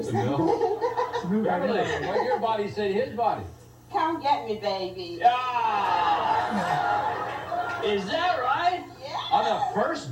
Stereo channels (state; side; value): identical; both; correlation 1.00